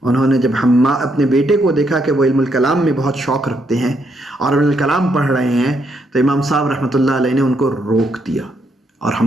انہوں نے جب اپنے بیٹے کو دیکھا کہ وہ علم الکلام میں بہت شوق رکھتے ہیں اور علم الکلام پڑھ رہے ہیں، تو امام صاحب رحمۃ اللہ علیہ نے ان کو روک دیا اور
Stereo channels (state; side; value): normal; both; correlation 0.76